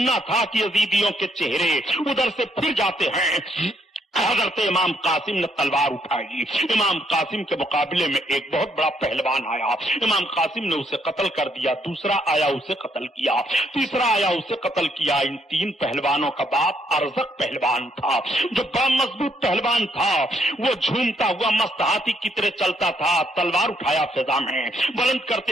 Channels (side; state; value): both; normal; correlation 0.72